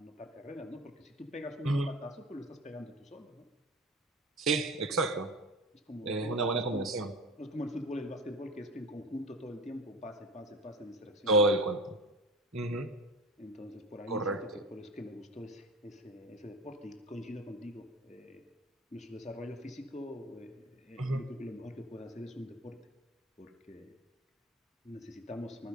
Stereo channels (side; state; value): both; normal; correlation 0.33